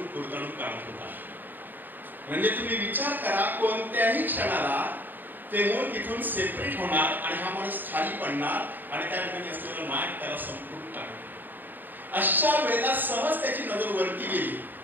कुरतडून काढत होता. म्हणजे तुम्ही विचार करा, कोणत्याही क्षणाला ते मूळ तिथून सेपरेट होणार आणि हा माणूस खाली पडणार आणि त्या ठिकाणी असलेलं नाग त्याला संपूर्ण टाकणार. अशा वेळेला सहज त्याची नजर वरती गेली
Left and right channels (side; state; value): left; late; 0.090 ms